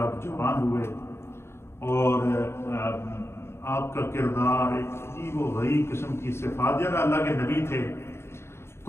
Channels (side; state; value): right; late; 0.12 ms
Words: آپ جوان ہوئے اور آپ کا کردار ایک عجیب و غریب قسم کی صفات، جب اللہ کے نبی تھے.